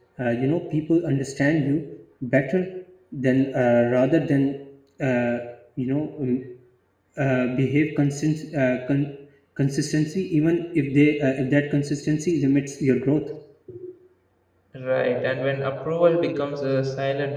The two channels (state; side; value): identical; both; correlation 1.00